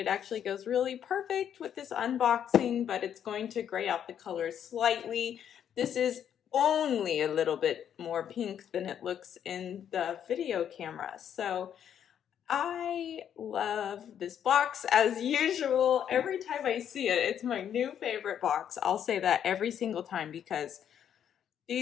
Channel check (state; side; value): quieter; right; 9.2 dB